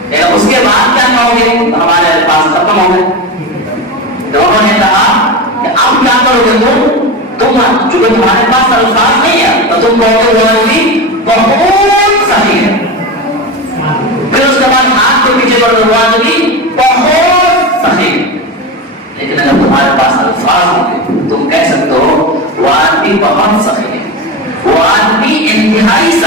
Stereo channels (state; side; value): normal; both; correlation 0.22